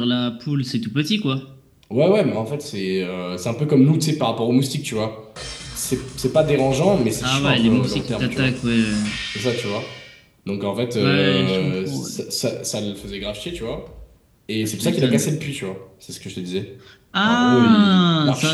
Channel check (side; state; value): both; identical; correlation 1.00